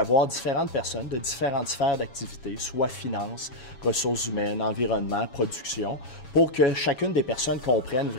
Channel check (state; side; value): late; right; 7.2 ms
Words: différentes personnes de différentes sphères d'activité, soit finances, ressources humaines, environnement, production, pour que chacune des personnes comprenne